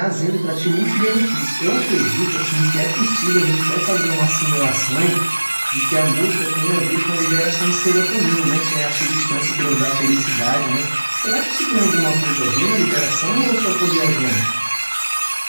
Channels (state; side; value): inverted; both; correlation -1.00